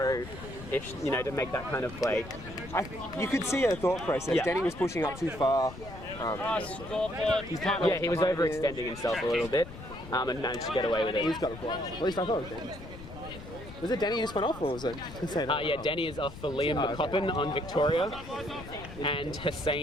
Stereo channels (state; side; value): noise; left; rumble, 14 dB below the sound